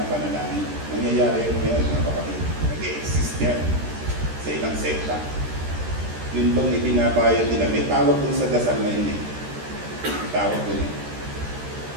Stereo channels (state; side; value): late; left; 13 ms